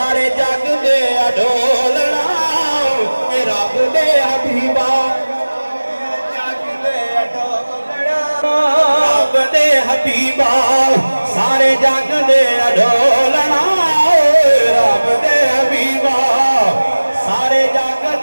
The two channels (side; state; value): both; inverted; correlation -1.00